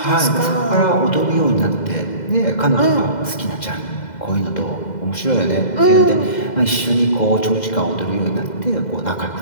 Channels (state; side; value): late; right; 2.0 ms